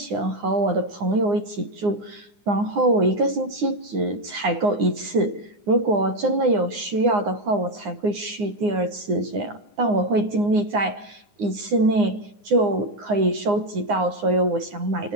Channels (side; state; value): left; late; 9.7 ms